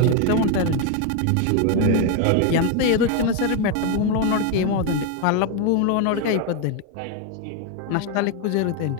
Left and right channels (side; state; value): both; different; correlation 0.02